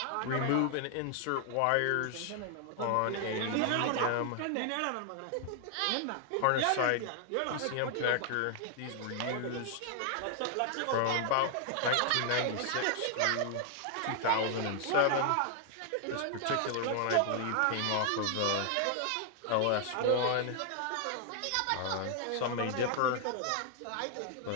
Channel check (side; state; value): both; different; correlation 0.00